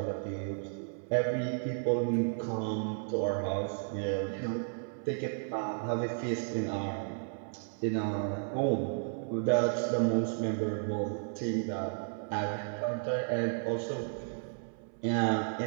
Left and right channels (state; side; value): silent; left; 56 dB below the other